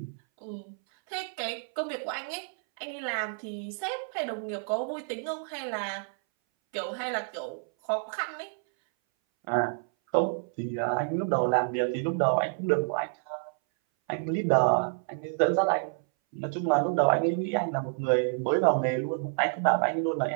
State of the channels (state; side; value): silent; left; 59 dB below the other